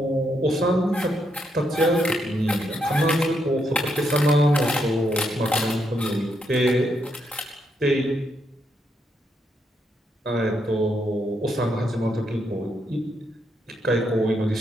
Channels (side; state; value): both; normal; correlation 0.78